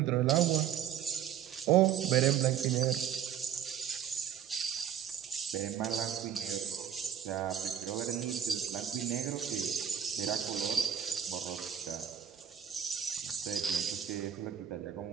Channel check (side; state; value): left; quieter; 9.1 dB